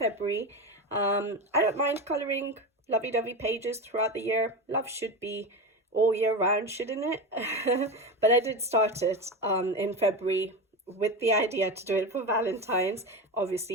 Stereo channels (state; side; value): normal; both; correlation 0.21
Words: I don't mind colouring lovey-dovey pages throughout the year. Love should be all year round, shouldn't it? But I did start it in February with the idea to do it for Valentine's.